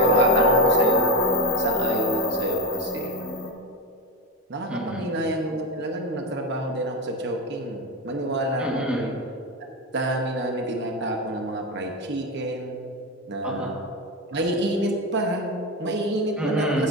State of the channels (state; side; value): normal; both; correlation 0.15